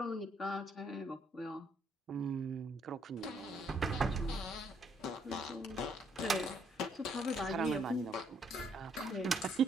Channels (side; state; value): both; normal; correlation 0.70